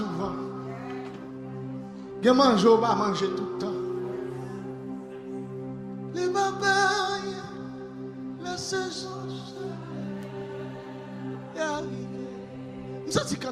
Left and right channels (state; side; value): identical; both; correlation 1.00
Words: Il y a manger ou pas manger tout le temps. Les papayes, la saison est arrivée. Je sens